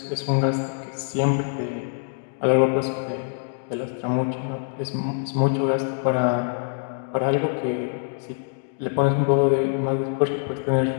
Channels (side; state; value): right; silent; digital silence